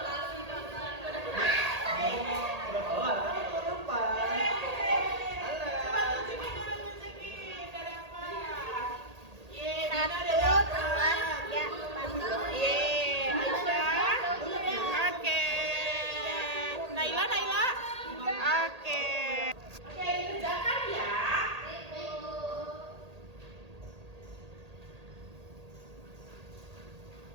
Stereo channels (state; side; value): late; left; 1.8 ms